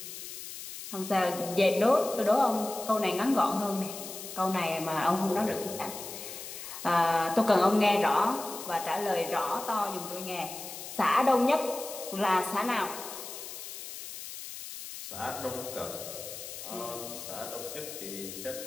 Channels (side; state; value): left; noise; hiss, 10 dB below the sound